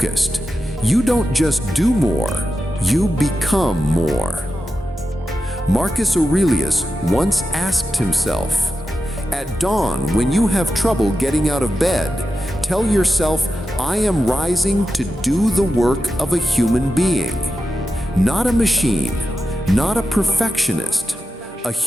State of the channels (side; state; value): both; normal; correlation 0.91